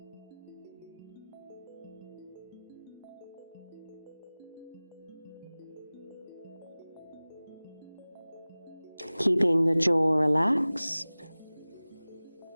Keeping the jaw relaxed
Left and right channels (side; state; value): both; inverted; correlation -0.99